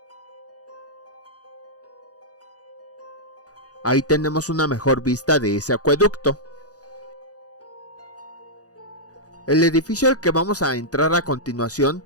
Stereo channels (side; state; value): right; late; 0.67 ms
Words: Ahí tenemos una mejor vista de ese acueducto. El edificio al que vamos a entrar a continuación